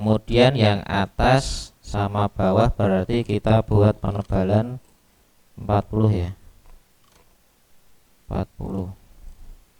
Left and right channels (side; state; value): both; identical; correlation 1.00